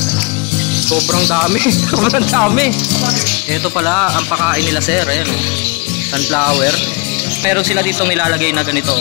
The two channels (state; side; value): quieter; right; 29.4 dB